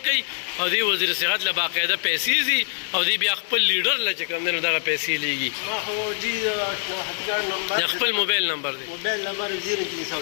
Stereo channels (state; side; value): silent; right; digital silence